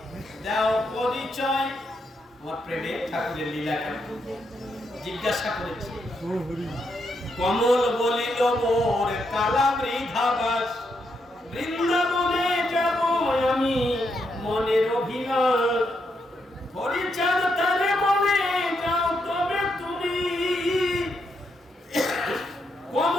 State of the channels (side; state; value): both; normal; correlation 0.80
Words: দাও পরিচয়। আমার প্রেমের ঠাকুরের লীলা জিজ্ঞাসা করেছে। কমল বলিল মোর কালা মৃধাবাস, বৃন্দাবনে যাব আমি মনের অভিলাষ। পরিচার তারে বলে যাও তবে তুমি,